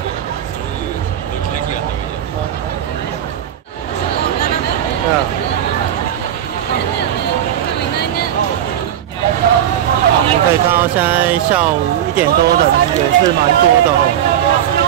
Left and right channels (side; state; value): left; quieter; 10.7 dB